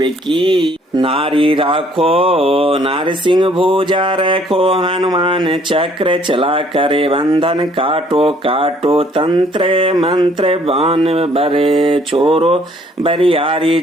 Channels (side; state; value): both; normal; correlation 0.62